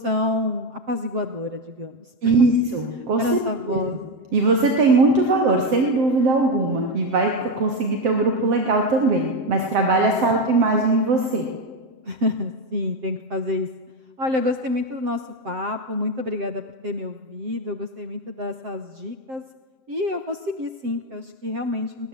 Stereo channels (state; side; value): late; left; 7.6 ms